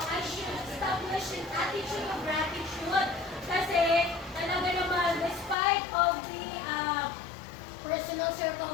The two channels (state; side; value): drops out; right; at 5.6 s